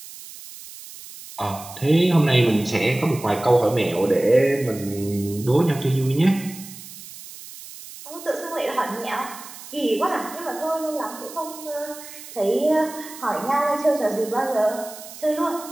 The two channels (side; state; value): right; noise; hiss, 15 dB below the sound